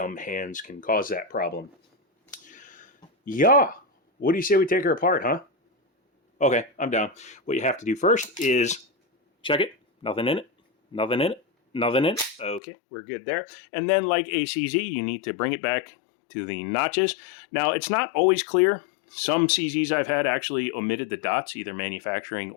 hands can cause that problem. Yeah, what do you say we take her apart, huh? Okay, I'm down. What you have to do first is check it. Nothing in it. Nothing in it. Nothing in it. Okay, we're good there. And then like ACZ, you need to bring it back to the notches. Now, it's not always clear. Some CZs I've had actually omitted the dots, either manufacturing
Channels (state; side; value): drops out; right; at 12.6 s